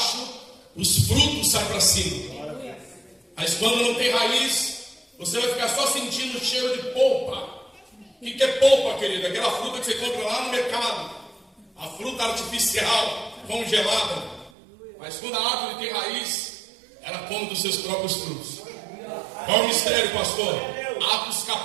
os frutos saem para cima. Mas quando não tem raiz, você vai ficar só sentindo o cheiro de polpa. O que é polpa, querido? Aquela fruta que você compra lá no mercado. A fruta artificial, congelada. Mas quando a árvore tem raiz, ela come dos seus próprios frutos. Qual é o mistério, pastor? Atos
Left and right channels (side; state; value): left; drops out; at 14.5 s